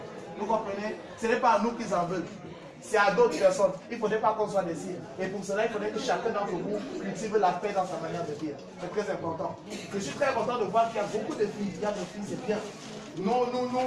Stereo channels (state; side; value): identical; both; correlation 1.00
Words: Vous comprenez? Ce n'est pas à nous qu'ils en veulent. C'est à d'autres personnes. Il ne faudrait pas qu'on soit des signes. Et pour cela, il faudrait que chacun d'entre vous cultive la paix dans sa manière de vivre. C'est très important. Je suis très content de voir qu'il y a beaucoup de filles. Il y a des filles, c'est bien.